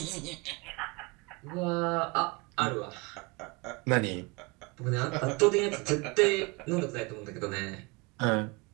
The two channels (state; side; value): quieter; left; 27.4 dB